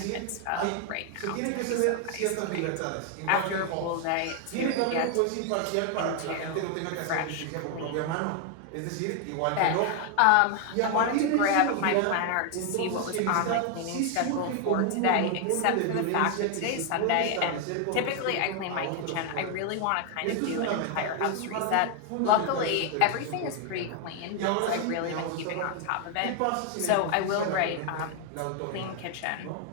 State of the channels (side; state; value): both; different; correlation 0.00